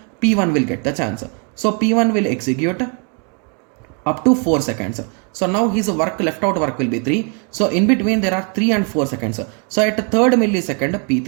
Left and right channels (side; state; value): left; quieter; 37.1 dB